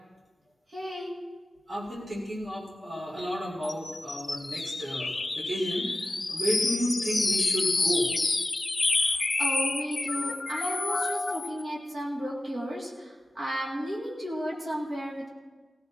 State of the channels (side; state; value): both; normal; correlation 0.94